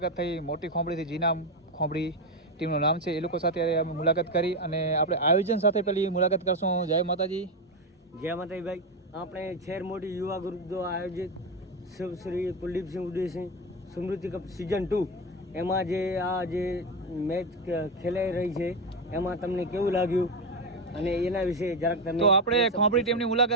થઈ। મોટી ખોંભડીથી જીનામ ખોંભડી ટીમનું નામ છે। એ લોકો સાથે અમે મુલાકાત કરી અને આપણે આયોજન સાથે પેલી મુલાકાત કરશું। જય માતાજી। જય માતાજી ભાઈ। આપણે શહેર મોટી યુવા ગ્રુપ દ્વારા આયોજિત શ્રી કુલદીપસિંહ ઉદયસિંહ સ્મૃતિ કપ સિઝન 2 એમાં જે મેચ ખેલાઈ રહી છે એમાં તમને કેવું લાગ્યું અને એના વિશે જરાક તમે તો આપણે ખોંભડી ટીમની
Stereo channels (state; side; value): normal; both; correlation 0.12